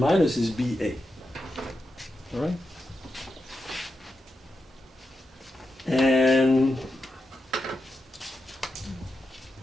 is BA. All right? And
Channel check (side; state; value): both; normal; correlation 0.88